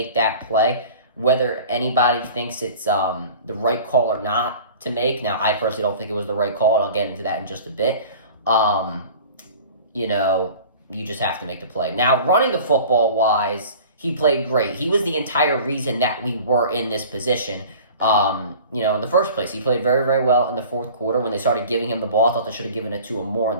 that play, whether anybody thinks it's the right call or not to make. Now, I personally don't think it was the right call, and I'll get into that in just a bit. You just have to make the play. Now, running the football wise, he played great. He was the entire reason that we were in this position. In the first place, he played very, very well in the fourth quarter. When they started giving him the ball, I thought they should have given it to him more in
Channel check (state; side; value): inverted; both; correlation -0.43